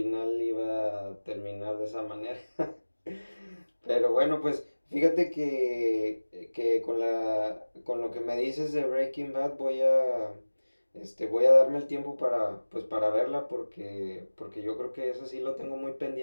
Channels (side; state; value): both; inverted; correlation -1.00